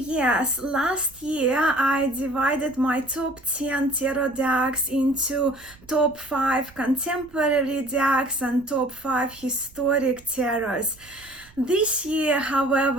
last year I divided my top 10 tarot decks into top 5 contemporary decks and top 5 historic tarots. This year,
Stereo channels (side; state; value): right; noise; rumble, 25 dB below the sound